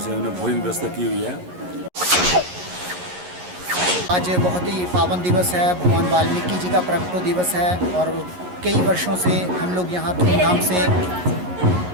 उन्होंने भोजन व्यवस्था की हुई है। आज बहुत ही पावन दिवस है, भगवान वाल्मीकि जी का प्रकटो दिवस है और कई वर्षों से हम लोग यहाँ धूमधाम से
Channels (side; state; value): left; late; 11 ms